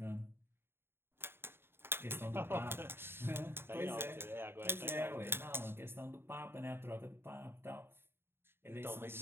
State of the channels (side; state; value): left; late; 0.11 ms